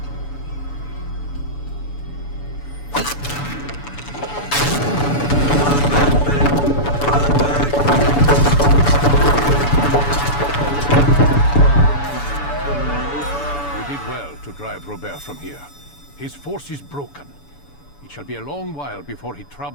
Robert from here. His force is broken. It shall be a long while before he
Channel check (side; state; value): right; late; 7.0 ms